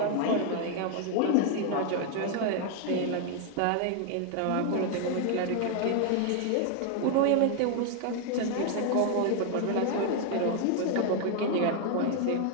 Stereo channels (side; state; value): both; different; correlation 0.00